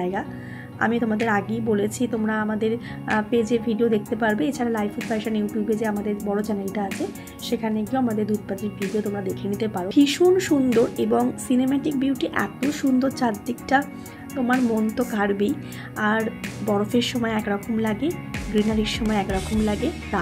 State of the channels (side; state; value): both; identical; correlation 1.00